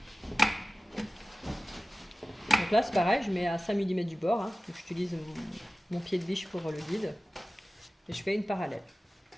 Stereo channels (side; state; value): both; normal; correlation 0.96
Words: Donc là, c'est pareil, je mets à 5 mm du bord. Hein. Donc j'utilise mon pied de biche pour le guide. Et je fais une parallèle.